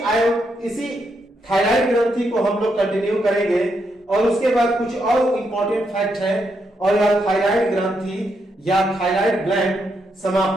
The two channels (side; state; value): both; normal; correlation 0.80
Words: इसी थायराइड ग्रंथि को हम लोग कंटिन्यू करेंगे और उसके बाद कुछ और इंपॉर्टेंट फैक्ट है और यह थायराइड ग्रंथि या थायराइड ग्लैंड